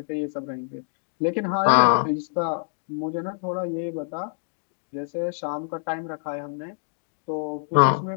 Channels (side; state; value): right; silent; digital silence